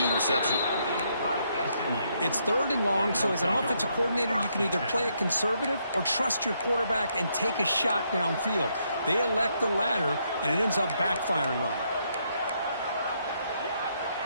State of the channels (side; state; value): both; inverted; correlation -0.75